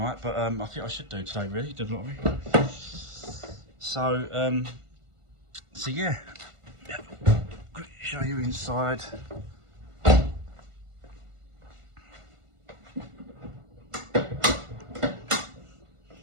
but I think I should do today, really, do the lottery. So yeah, show you inside.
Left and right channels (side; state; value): left; late; 1.5 ms